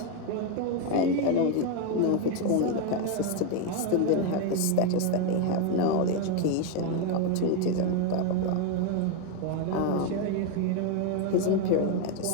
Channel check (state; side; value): different; both; correlation 0.02